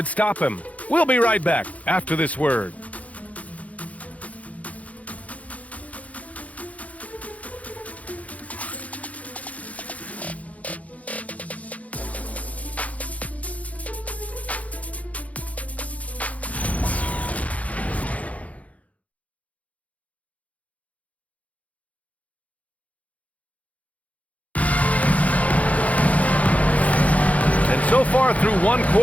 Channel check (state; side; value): late; right; 0.068 ms